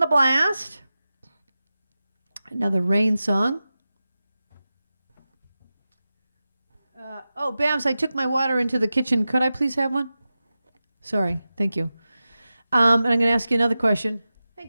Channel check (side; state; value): both; inverted; correlation -0.94